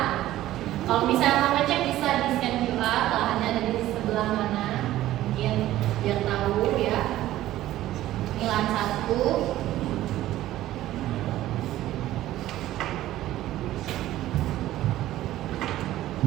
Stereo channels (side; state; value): left; quieter; 14.5 dB